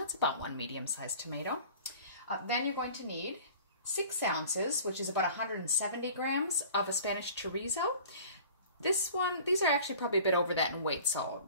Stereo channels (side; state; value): both; inverted; correlation -0.45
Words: about one medium-sized tomato. Then you're going to need 6 ounces, which is about 170 grams of a Spanish chorizo. These are actually probably a bit over that in weight, so